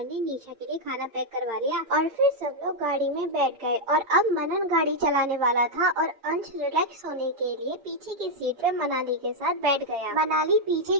ने निशा के लिए खाना पैक करवा लिया और फिर सब लोग गाड़ी में बैठ गए। और अब मनन गाड़ी चलाने वाला था और अंश रिलैक्स होने के लिए पीछे की सीट पे मनाली के साथ बैठ गया। मनाली पीछे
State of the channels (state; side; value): late; left; 8.7 ms